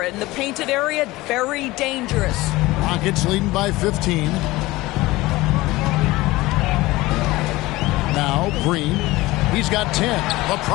in the painted area, very dangerous. Rockets leading by 15. Now Green. He's got 10. The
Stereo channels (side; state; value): right; quieter; 19.5 dB